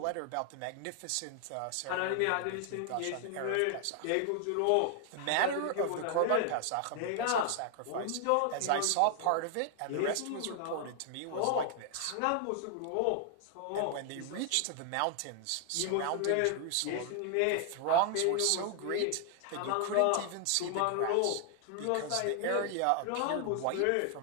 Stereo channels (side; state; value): both; different; correlation 0.00